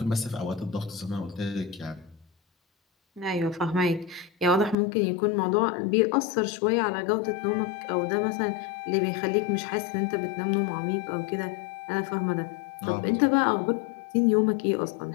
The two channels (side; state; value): right; drops out; at 4.8 s